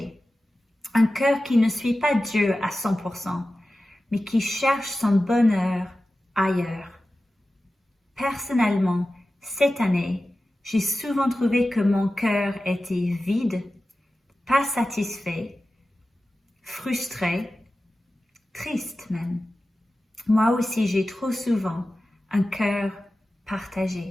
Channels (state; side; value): normal; both; correlation 0.94